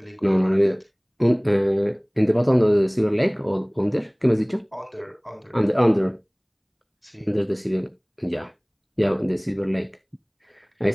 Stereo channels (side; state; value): both; identical; correlation 1.00